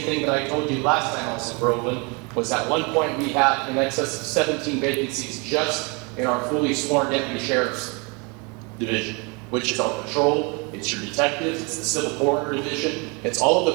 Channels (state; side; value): quieter; left; 30.7 dB